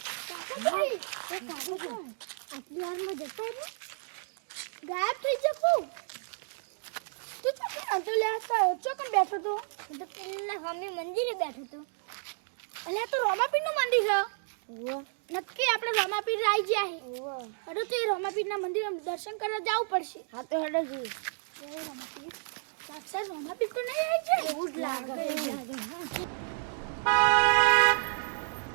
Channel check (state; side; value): silent; left; digital silence